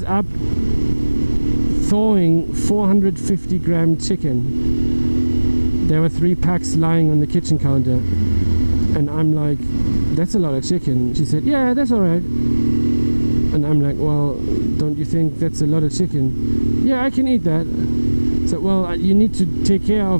up thawing 450 gram chicken. There were 3 packs lying on the kitchen counter. And I'm like, that's a lot of chicken. She said, yeah, that's all right. And I'm like, well, don't you think that's a lot of chicken? Yeah, I can eat that. So, well, you need to take care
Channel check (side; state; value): both; inverted; correlation -1.00